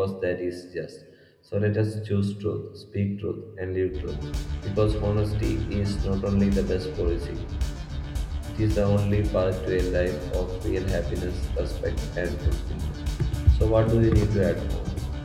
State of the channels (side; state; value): both; identical; correlation 1.00